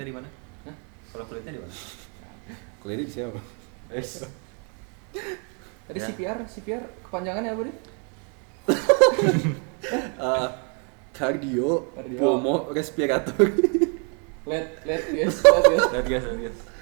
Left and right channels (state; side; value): quieter; left; 38.5 dB